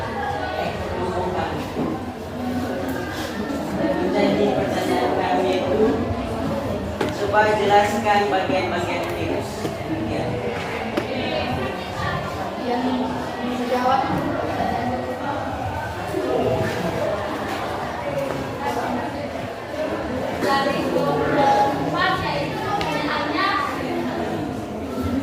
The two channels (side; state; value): both; identical; correlation 1.00